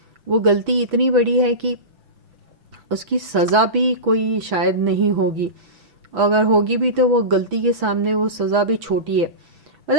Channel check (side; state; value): left; late; 6.1 ms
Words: वो गलती इतनी बड़ी है कि उसकी सज़ा भी कोई शायद नहीं होगी, अगर होगी भी तो वो गलती के सामने वो सज़ा भी छोटी है।